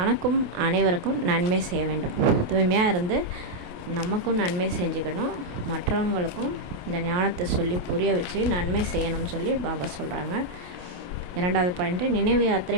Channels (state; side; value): late; left; 28 ms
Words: அனைவருக்கும் நன்மை செய்ய வேண்டும். தூய்மையாக இருந்து நமக்கும் நன்மை செஞ்சுக்கணும், மற்றவங்களுக்கும் இந்த ஞானத்தை சொல்லி புரிய வச்சு நன்மை செய்யணும்னு பாபா சொல்கிறாங்க. 2வது பாயிண்ட்டு, நினைவு